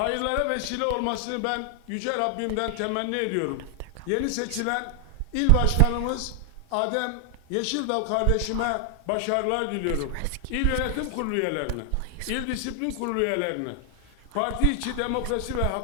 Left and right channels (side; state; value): both; different; correlation 0.00